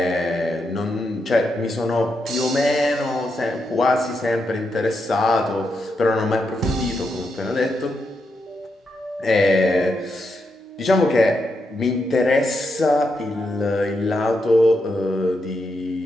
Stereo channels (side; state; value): both; normal; correlation 0.83